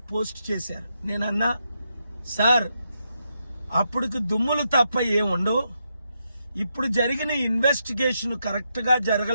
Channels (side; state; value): both; inverted; correlation -0.82